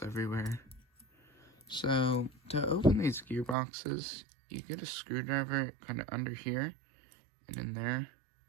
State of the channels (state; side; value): drops out; left; at 3.6 s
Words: everywhere. So to open these gearboxes, you get a screwdriver kind of under here and in there,